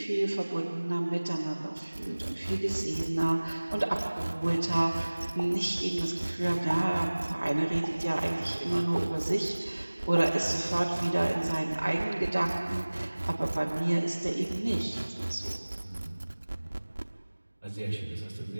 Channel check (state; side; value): inverted; both; correlation -1.00